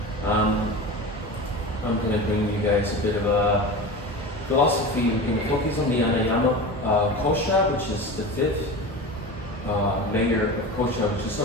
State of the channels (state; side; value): normal; both; correlation 0.29